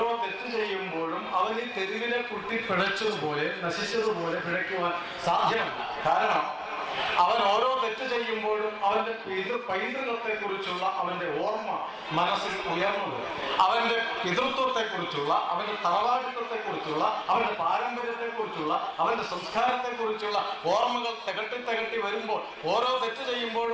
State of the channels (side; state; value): both; identical; correlation 1.00